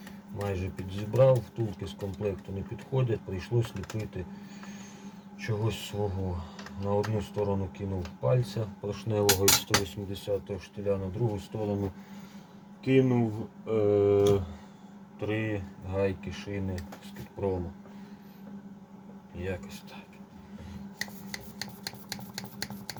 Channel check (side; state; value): both; identical; correlation 1.00